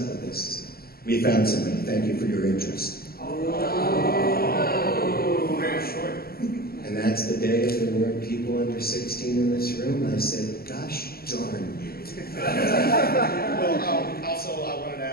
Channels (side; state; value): right; late; 0.44 ms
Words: with this? We found somebody. Thank you for your interest. Oh, very short. And that's the day if there weren't people under 16 in this room. I said, gosh darn you. Well, also I wanted to